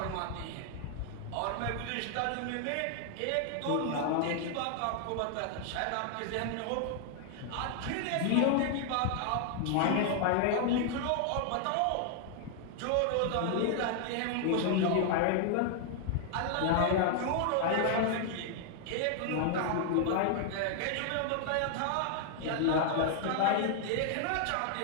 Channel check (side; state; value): both; different; correlation 0.00